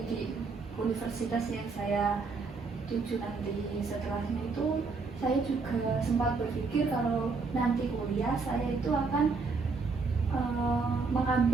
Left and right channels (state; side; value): quieter; left; 4.4 dB